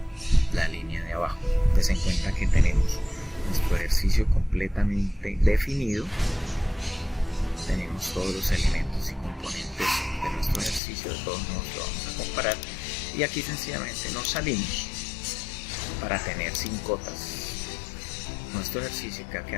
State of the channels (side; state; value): right; drops out; at 10.8 s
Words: la línea de abajo. Ten en cuenta que tenemos nuestro ejercicio completamente definido, tenemos todos los elementos y componentes de nuestro ejercicio, de todos modos lo vamos a comparar y aquí sencillamente nos salimos para tener sin cotas nuestro ejercicio, que va a